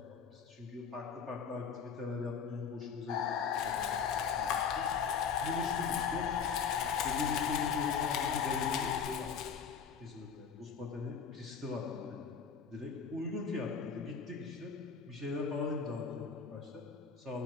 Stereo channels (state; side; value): quieter; right; 6.3 dB